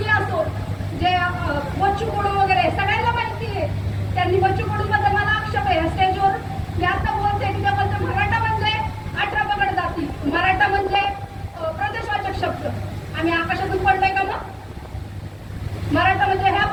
असो, जे बच्चू कडू वगैरे सगळ्यांना माहिती आहे. त्यांनी बच्चू कडू बद्दल मला आक्षेप आहे स्टेजवर. मी आता बोलते की त्याबद्दल मराठा म्हणजे 18 पगड जाती, मराठा म्हणजे प्रदेशवाचक शब्द. आम्ही आकाशातून पडलोय का मग? मराठा म्हणजे ह्या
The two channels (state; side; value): identical; both; correlation 1.00